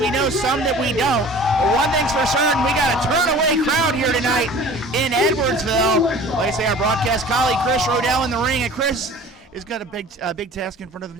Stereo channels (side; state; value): both; normal; correlation 0.44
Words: know some that we don't. But one thing's for certain, we got a turn-away crowd here tonight in Edwardsville. Like I say, our broadcast colleague Chris Rodell in the ring, and Chris has got a big task in front of him